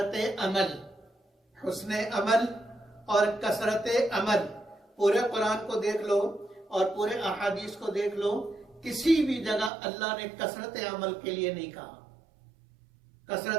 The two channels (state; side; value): drops out; left; at 9.7 s